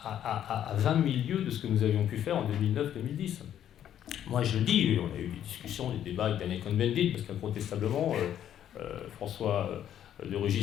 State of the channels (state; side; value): quieter; right; 10.5 dB